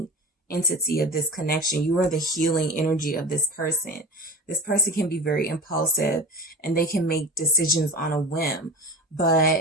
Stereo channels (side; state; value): both; normal; correlation 0.33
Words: entity of this connection. You are the healing energy of this person. This person can be very impulsive and they can make decisions on a whim,